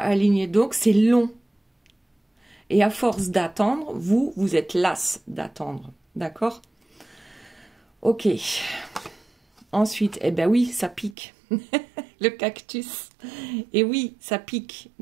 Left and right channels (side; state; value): left; drops out; at 11.2 s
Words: Donc, c'est long. Et à force d'attendre, vous êtes las d'attendre. D'accord? Ok. Ensuite, eh ben oui, ça pique. Le cactus. Et oui, ça pique.